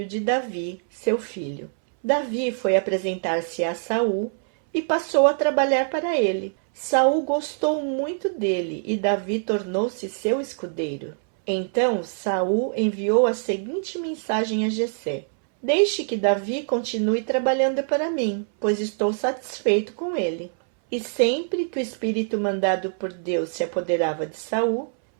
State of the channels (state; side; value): silent; left; 62 dB below the other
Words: de Davi, seu filho. Davi foi apresentar-se a Saul e passou a trabalhar para ele. Saul gostou muito dele e Davi tornou-se seu escudeiro. Então Saul enviou a seguinte mensagem a Jessé: deixe que Davi continue trabalhando para mim, pois estou satisfeito com ele. E sempre que o espírito mandado por Deus se apoderava de Saul,